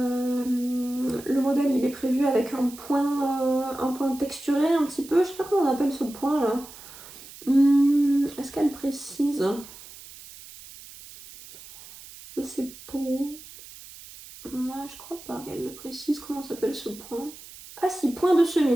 modèle, il est prévu avec un point texturé un petit peu. Je sais pas comment on appelle ce point là. Est-ce qu'elle précise? Je sais pas. Je crois pas qu'elle le précise. Comment s'appelle ce point? Ah si, point de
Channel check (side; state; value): right; noise; hiss, 17 dB below the sound